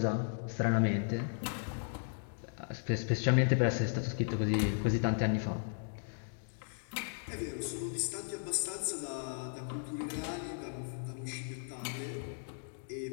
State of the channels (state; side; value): silent; right; digital silence